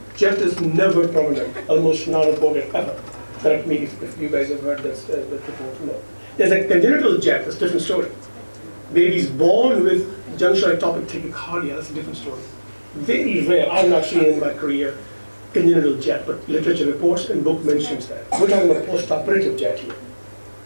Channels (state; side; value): inverted; both; correlation -1.00